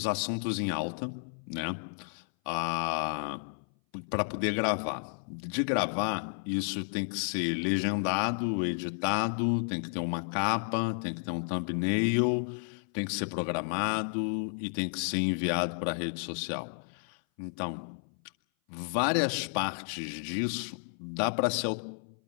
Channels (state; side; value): silent; right; 57 dB below the other